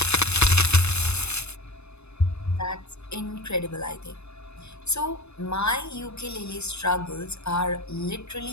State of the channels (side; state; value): right; late; 0.81 ms